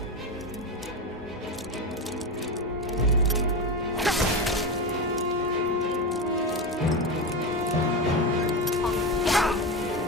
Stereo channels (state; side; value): normal; both; correlation 0.17